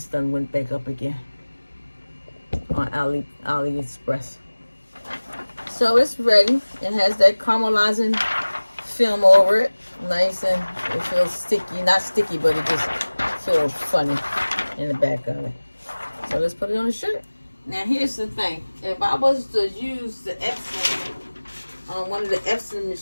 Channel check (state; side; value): inverted; both; correlation -1.00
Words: done went back up again on AliExpress. So it's ready. It has that caramelizing film over it. Nice, and it feels sticky. Not sticky, but it just feels funny in the back of it. So let's put it on the shirt. Now here's the thing. If I was to use the Epson on one of the Epson